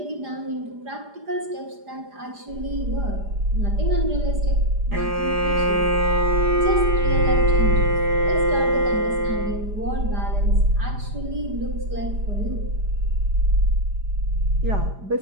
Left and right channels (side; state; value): left; late; 4.9 ms